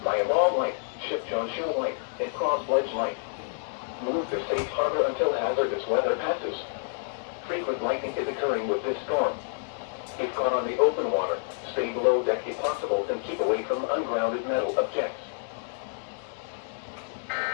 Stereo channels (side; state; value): right; silent; 58 dB below the other